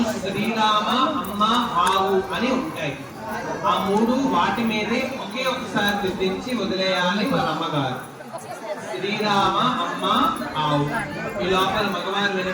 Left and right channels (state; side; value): identical; both; correlation 1.00